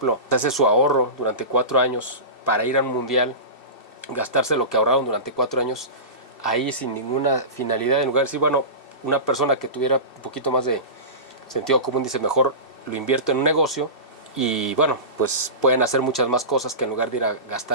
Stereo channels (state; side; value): late; right; 2.7 ms